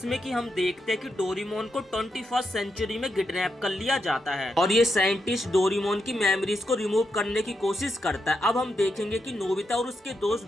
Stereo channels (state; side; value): normal; both; correlation 0.83